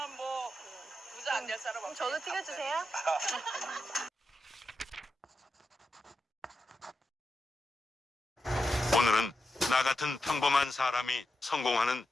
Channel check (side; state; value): both; normal; correlation 0.88